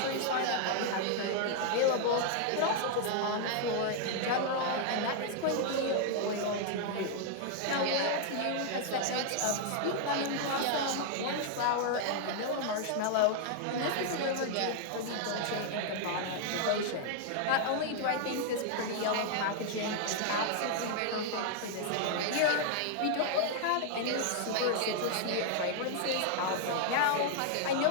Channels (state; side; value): different; both; correlation 0.00